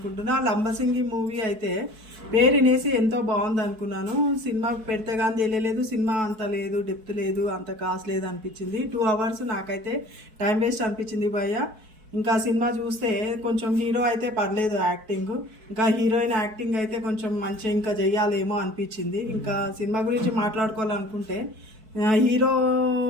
లంబసింగి మూవీ అయితే పేరు వినేసి ఎంతో బాగుంది అనుకున్నాను. సినిమా పెడితే కానీ తెలియలేదు, సినిమా అంత లేదు, డెప్త్ లేదు, అంత కాస్ట్ లేదు అనిపించింది. 2 hours నాకైతే టైం వేస్ట్ అనిపించింది భయ్య. ఇంకా సినిమా చూస్తే కొంచెం హీరో అయితే పర్లేదు యాక్టింగ్, ఇంకా హీరోయిన్ యాక్టింగ్ అయితే కొంచెం మంచిగా ఇంకా చెయ్యాలేమో అనిపించింది. ఇంకా సినిమా గురించి మాట్లాడుకోవాలనుకుంటే హీరో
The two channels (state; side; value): late; left; 4.6 ms